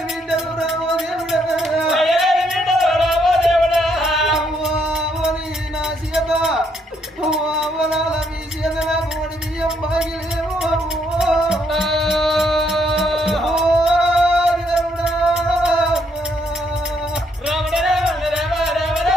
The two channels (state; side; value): normal; both; correlation 0.73